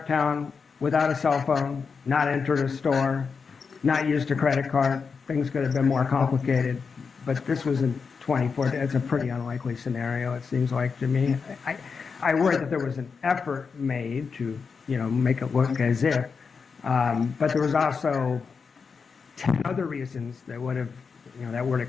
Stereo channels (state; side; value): quieter; right; 5.4 dB